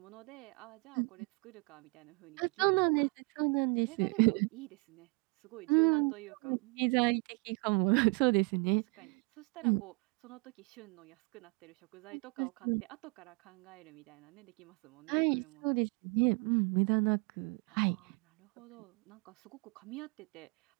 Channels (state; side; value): quieter; left; 33.3 dB